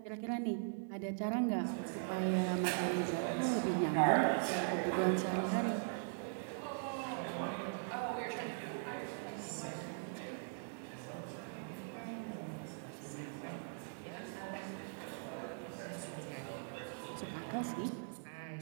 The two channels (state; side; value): silent; left; digital silence